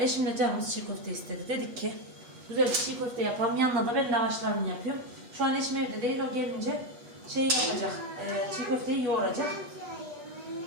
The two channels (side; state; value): left; late; 8.2 ms